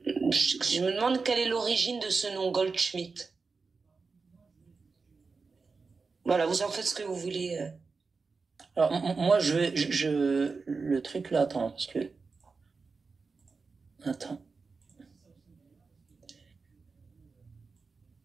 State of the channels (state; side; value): quieter; left; 4.5 dB